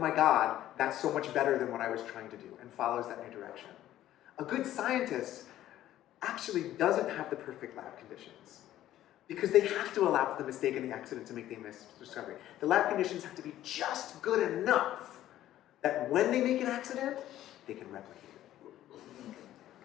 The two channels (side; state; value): right; quieter; 13.2 dB